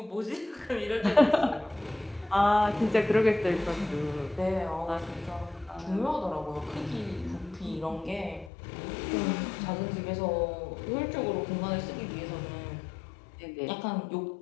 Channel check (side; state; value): right; drops out; at 8.5 s